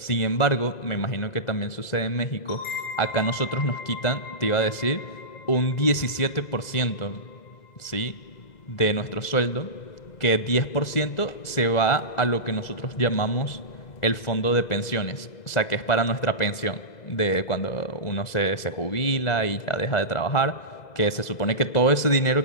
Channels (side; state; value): right; late; 2.0 ms